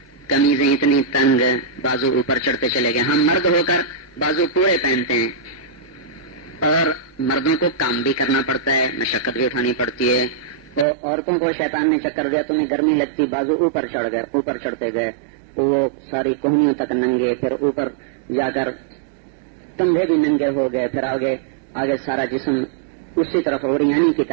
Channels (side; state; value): left; drops out; at 10.9 s